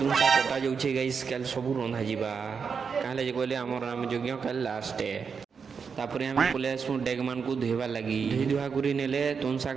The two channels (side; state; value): left; quieter; 5.9 dB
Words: शाग कटा जाऊे गाइस काल सब रंधा जा कहले कहले आमर नाम यज्ञ काल लास्ट तापर आम पलि आसू डेग मान को धोबार लगी धोई धुआ कर नेले तुन